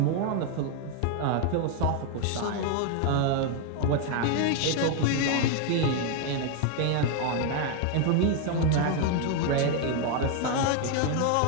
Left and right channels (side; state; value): both; different; correlation 0.00